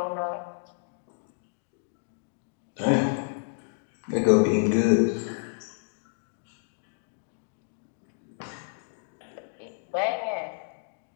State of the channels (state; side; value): silent; right; digital silence